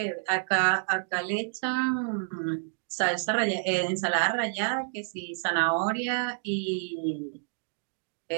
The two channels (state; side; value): silent; left; digital silence